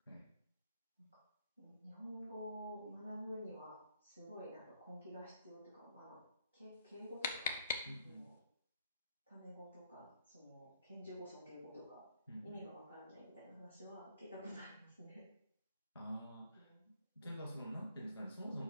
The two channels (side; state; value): both; inverted; correlation -0.66